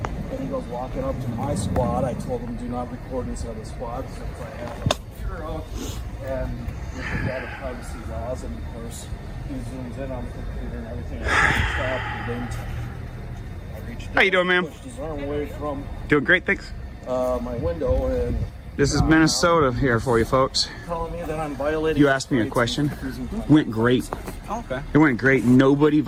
he goes walking up to my squad. I told him do not record inside the squad since I have a computer out and with the data privacy laws, and of course he zooms in on the computer and everything. I stopped and then I reached How you doing, ma'am? pushed his arm away from Doing great, thanks. my window and This is Minnesota here for you folks. telling me that I'm violating. You asked me a his rights question. and refusing to- Went great. Okay. It went great. Nobody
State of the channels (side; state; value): both; identical; correlation 1.00